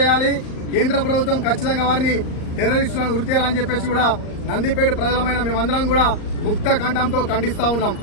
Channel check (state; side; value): late; right; 38 ms